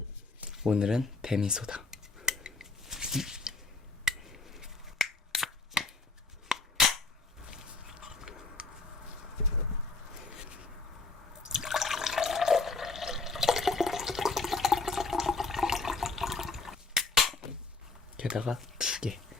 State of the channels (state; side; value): quieter; right; 3.9 dB